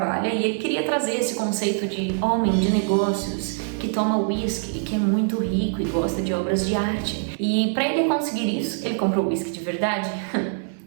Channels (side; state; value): left; silent; 60 dB below the other